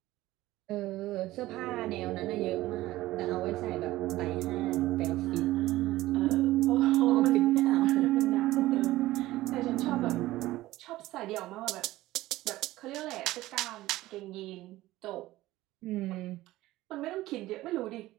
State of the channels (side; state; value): left; quieter; 16.8 dB